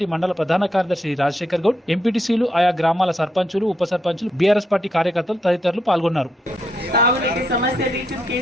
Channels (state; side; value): normal; both; correlation 0.79